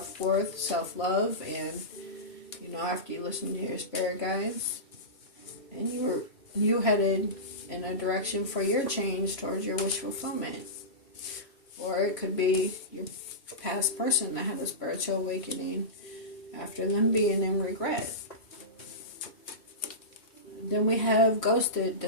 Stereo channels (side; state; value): right; late; 3.0 ms